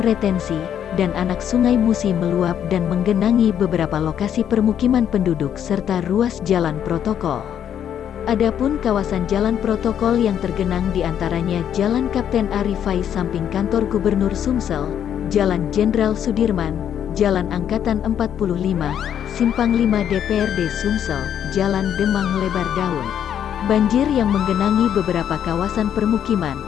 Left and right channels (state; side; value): quieter; right; 9.4 dB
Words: retensi, dan anak sungai Musi meluap dan menggenangi beberapa lokasi permukiman penduduk serta ruas jalan protokol. Adapun kawasan jalan protokol yang tergenang diantaranya Jalan Kapten Arifai samping kantor Gubernur Sumsel, Jalan Jenderal Sudirman, Jalan Angkatan 45, Simpang 5 DPRD Sumsel, Jalan Demang Lebar Daun. Banjir yang menggenangi beberapa kawasan permukiman